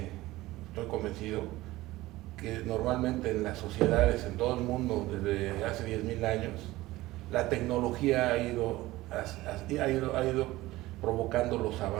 estoy convencido que normalmente en las sociedades, en todo el mundo, desde hace 10.000 años, la tecnología ha ido provocando los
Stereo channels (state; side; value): quieter; left; 18.0 dB